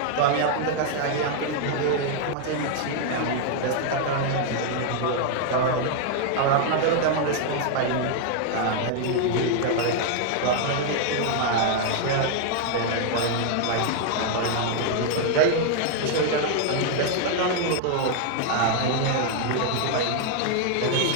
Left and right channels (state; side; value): different; both; correlation 0.00